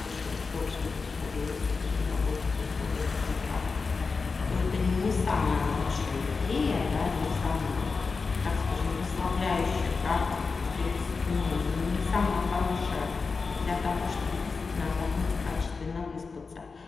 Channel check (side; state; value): right; quieter; 4.6 dB